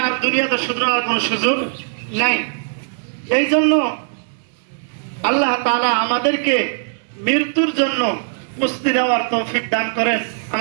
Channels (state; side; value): silent; left; 66 dB below the other